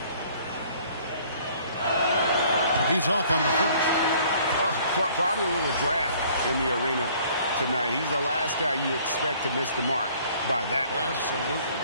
He's off on the first. Probably a little draft in the arena tonight. He's the last guy you expect to miss the mark by that much. Absolutely.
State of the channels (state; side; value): inverted; both; correlation -0.57